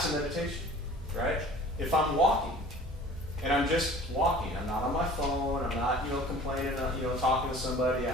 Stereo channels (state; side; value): normal; both; correlation 0.46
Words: a meditation, right? If I'm walking, and I'm just walking, I'm not on my phone, I'm not, complaining, talking to somebody,